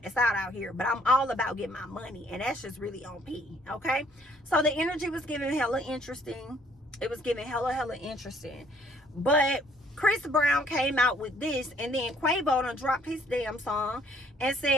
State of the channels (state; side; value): normal; both; correlation 0.63